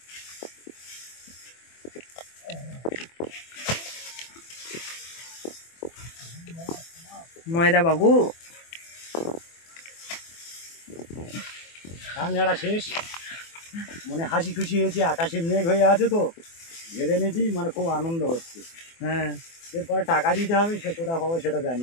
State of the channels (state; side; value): late; right; 24 ms